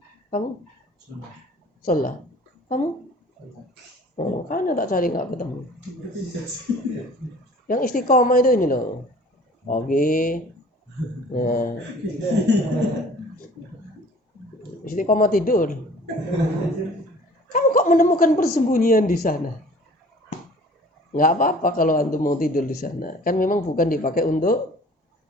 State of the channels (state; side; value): normal; both; correlation 0.48